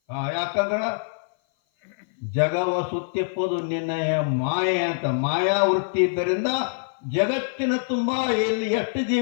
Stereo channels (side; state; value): right; silent; 56 dB below the other